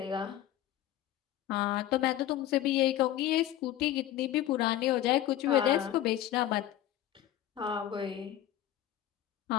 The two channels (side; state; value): right; quieter; 12.6 dB